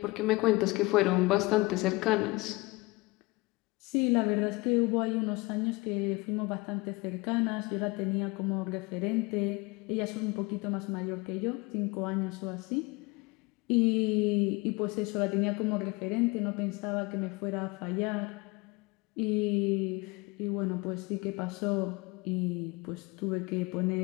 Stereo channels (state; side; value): quieter; right; 23.8 dB